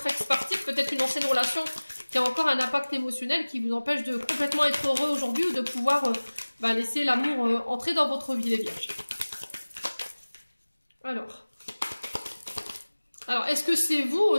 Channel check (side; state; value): both; inverted; correlation -1.00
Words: ex partir, peut-être une ancienne relation qui a encore un impact émotionnel qui vous empêche de complètement être heureux aujourd'hui ou de pouvoir laisser l'amour entrer dans votre vie, les vierges. Alors est-ce que c'est vous